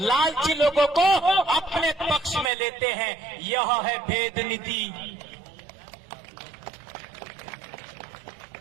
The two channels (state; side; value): drops out; left; at 2.5 s